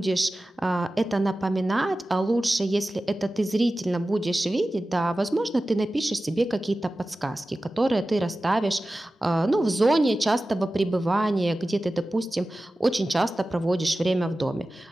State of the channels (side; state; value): both; normal; correlation 0.95